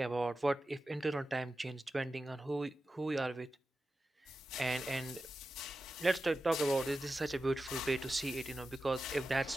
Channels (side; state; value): both; normal; correlation 0.92